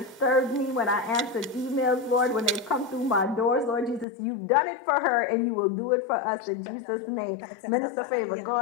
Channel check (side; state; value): right; drops out; at 4.0 s